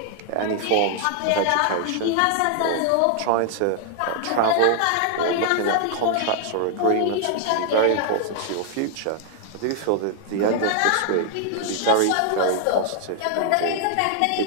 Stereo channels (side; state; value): both; different; correlation 0.00